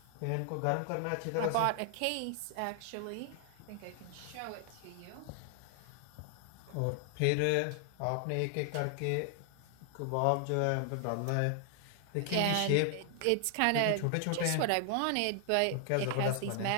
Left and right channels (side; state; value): both; different; correlation 0.00